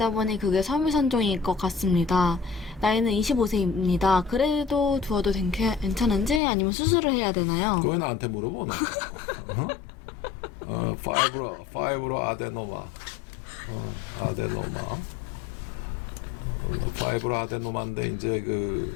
보니 그게 섬유선종일 것 같습니다. 나이는 25세입니다. 그래도 두어도 괜찮은지 아니면 수술을 해야 되나요? 그거 왜 나한테 물어보나? 파이브로 아데노마. 아데노마. 파이브로 아데노마인데 이제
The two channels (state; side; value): drops out; right; at 6.4 s